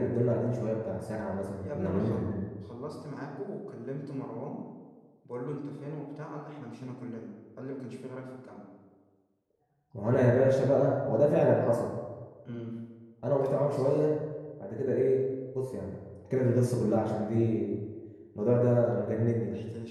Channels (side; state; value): both; identical; correlation 1.00